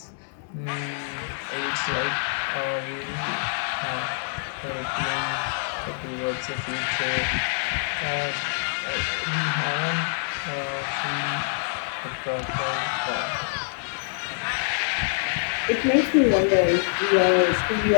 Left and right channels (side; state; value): right; silent; digital silence